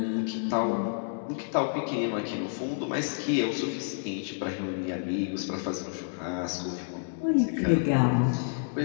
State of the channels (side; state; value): right; silent; 58 dB below the other